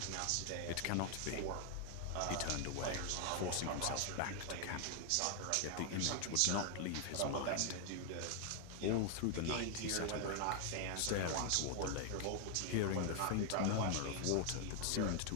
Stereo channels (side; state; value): both; different; correlation 0.00